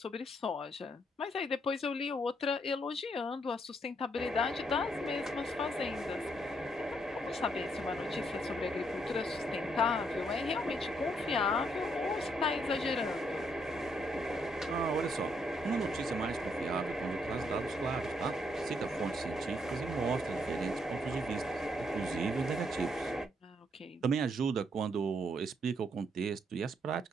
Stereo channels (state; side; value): normal; both; correlation 0.74